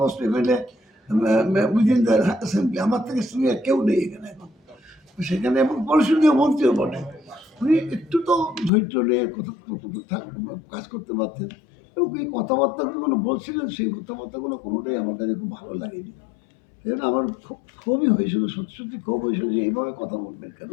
most MLA within the assembly, আমার থেকে সিনিয়র কেউ নেই এখানে এখন। সেখানে এবং পরিষদীয় মন্ত্রীও বটে, উনি একটু তো ধৈর্য নিয়ে কাজ করতে পারতেন। এবং এই কথাবার্তাগুলো বলছিলেন, সেই কথাবার্তাগুলো কোনোটাই আমার কাছে খুব ভালো লাগেনি। এই জন্য আমার খুব ক্ষোভই হয়েছিল, সত্যি সত্যি ক্ষোভ হয়েছিল যে এইভাবে কথা বলবেন কেন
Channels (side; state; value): right; drops out; at 8.7 s